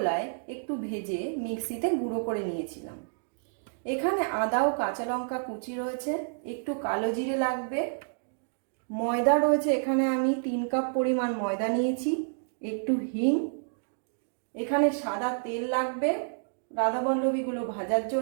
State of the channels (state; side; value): silent; left; digital silence